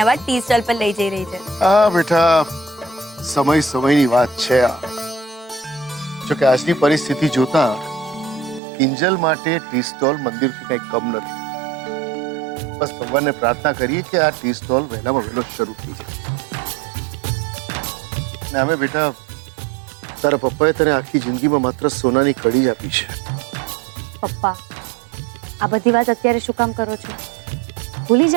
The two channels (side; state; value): left; drops out; at 8.6 s